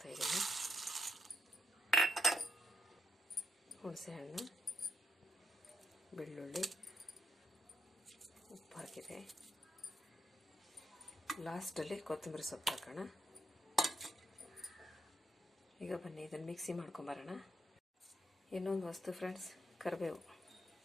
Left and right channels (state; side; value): normal; both; correlation 0.80